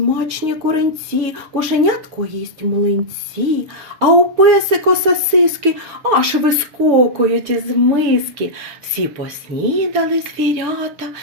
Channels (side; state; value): left; late; 6.5 ms